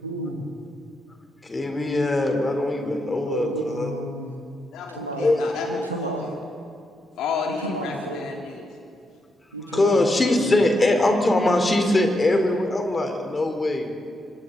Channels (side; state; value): both; normal; correlation 0.82